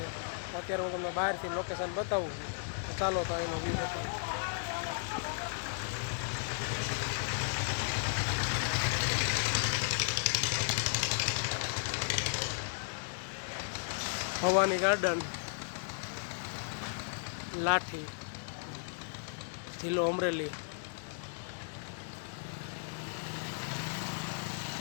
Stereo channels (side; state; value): right; silent; digital silence